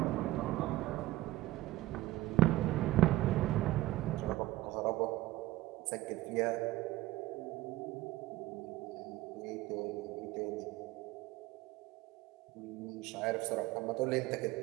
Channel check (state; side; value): quieter; left; 16.8 dB